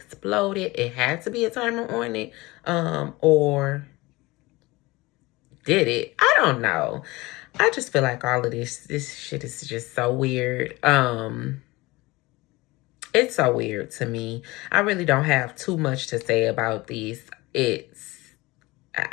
it had to be a timer on it. Or did it? I don't know. I just feel like all of this shit is just so weird. It's so weird to me. I really don't have too much to say about these.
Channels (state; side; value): quieter; right; 21.6 dB